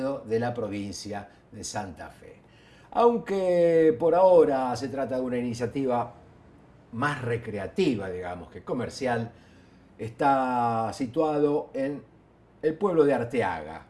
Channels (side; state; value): both; identical; correlation 1.00